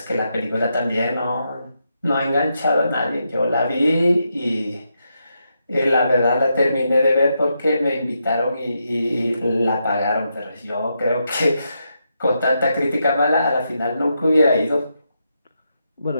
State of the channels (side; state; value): both; inverted; correlation -0.83